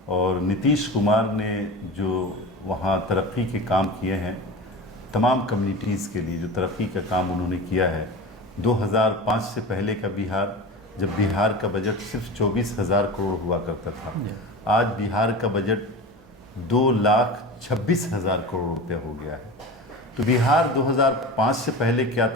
और नीतीश कुमार ने जो वहाँ तरक्की के काम किए हैं, तमाम कम्युनिटीज़ के लिए जो तरक्की का काम उन्होंने किया है। 2005 से पहले का बिहार, जब बिहार का बजट सिर्फ 24,000 करोड़ हुआ करता था, आज बिहार का बजट 2,26,000 करोड़ रुपये हो गया है। तो बिहार 2005 से पहले क्या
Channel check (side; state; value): both; normal; correlation 0.30